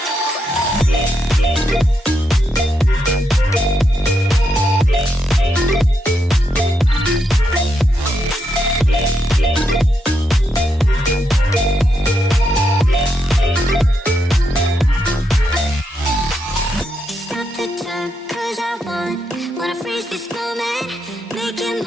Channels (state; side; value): normal; both; correlation 0.81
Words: Wanna freeze this moment, make it